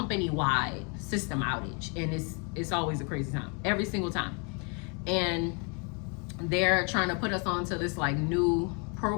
system outage, and it's always a crazy time, every single time. And they're trying to put us onto this like new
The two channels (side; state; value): right; quieter; 35.6 dB